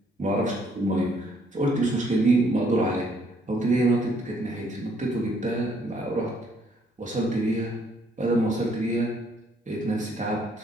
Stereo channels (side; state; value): both; normal; correlation 0.67